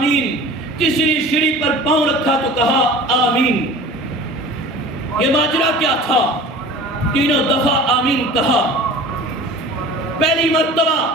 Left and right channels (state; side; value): normal; both; correlation 0.40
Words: تیسری سیڑھی پر پاؤں رکھا تو کہا آمین۔ یہ ماجرا کیا تھا؟ تینوں دفعہ آمین کہا۔ پہلی مرتبہ